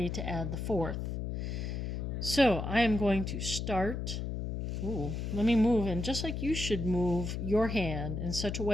to add the 4th. So I am going to start. Let me move, and just like you should move your hand in such a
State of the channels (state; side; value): noise; left; hum, 3 dB below the sound